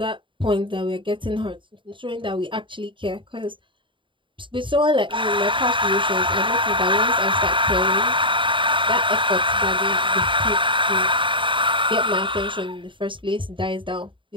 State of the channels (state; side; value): late; left; 0.24 ms